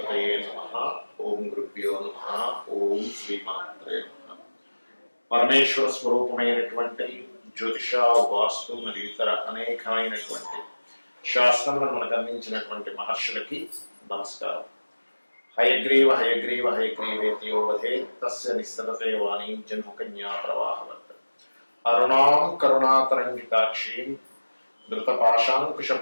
నమః. ఓం గురుభ్యో నమః. ఓం శ్రీమాత్రే నమః. పరమేశ్వర స్వరూపమైనటువంటి జ్యోతిష, వాస్తు మరియు ఇతర అనేకమైనటువంటి శాస్త్రములను మనకు అందించినటువంటి మహర్షులకి నమస్కారం. హయగ్రీవ హయగ్రీవ హయగ్రీవేతియో వధే తస్య నిస్సరతే వాణీం జన్మకన్యా ప్రవాహవత్ అరుణాం కరుణాతరంగితాక్షీం ధృతపాశాంకుశ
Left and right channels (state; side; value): inverted; both; correlation -1.00